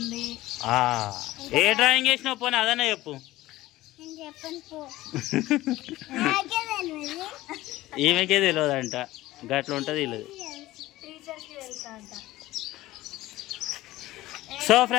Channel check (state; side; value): quieter; right; 16.9 dB